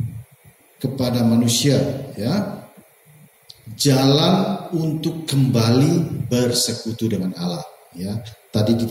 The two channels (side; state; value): both; identical; correlation 1.00